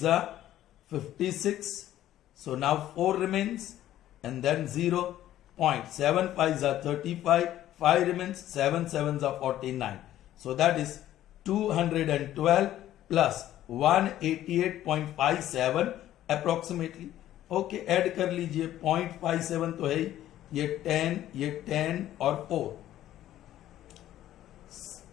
are 56, so now 4 remains and then 0, point 7 5s are 35, 5 remains, 7 7s are 49. So that is 212 plus 188.57 approximately. Okay, add कर लीजिए, 0.57 तो है, ये 10 और 4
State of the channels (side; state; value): right; quieter; 13.0 dB